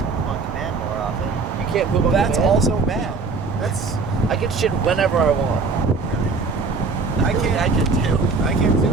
poop on command more often. You can't poop on That's command. also bad. That's I can shit whenever I want. I can't. I can too. I can't do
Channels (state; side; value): quieter; left; 4.3 dB